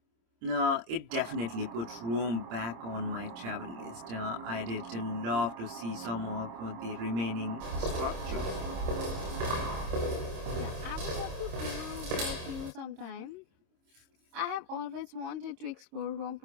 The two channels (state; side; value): late; left; 26 ms